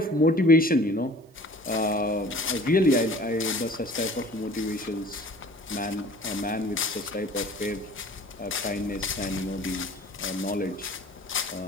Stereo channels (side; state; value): both; normal; correlation 0.47